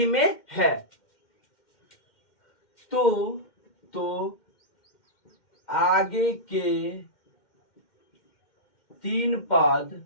में है। तो आगे के 3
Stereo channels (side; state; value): right; late; 2.1 ms